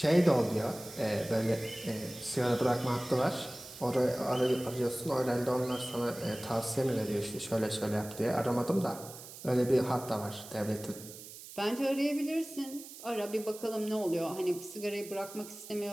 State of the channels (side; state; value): right; noise; hiss, 14 dB below the sound